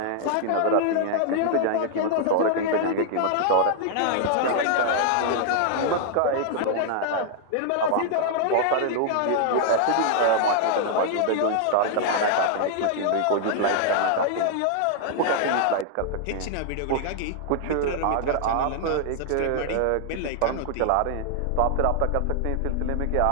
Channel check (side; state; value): both; different; correlation -0.01